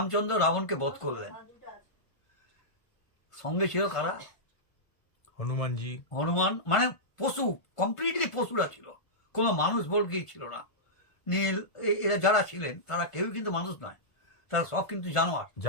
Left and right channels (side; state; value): right; late; 1.4 ms